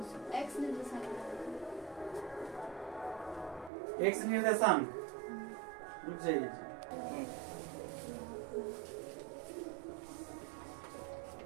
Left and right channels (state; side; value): drops out; left; at 3.7 s